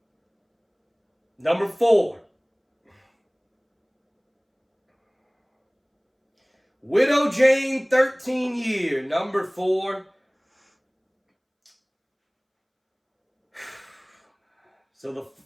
number 4. Widow Jane 13 year. Number 4.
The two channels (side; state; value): both; identical; correlation 1.00